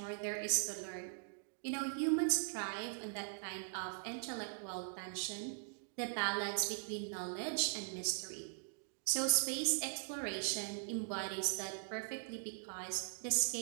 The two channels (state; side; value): silent; left; digital silence